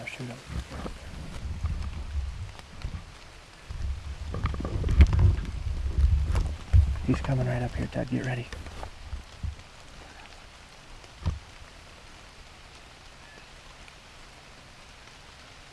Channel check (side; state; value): both; identical; correlation 1.00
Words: to shoot him. He's coming right up here, Ted. Get ready.